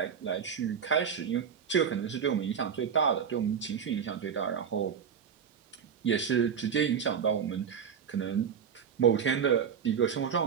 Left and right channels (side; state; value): left; quieter; 7.4 dB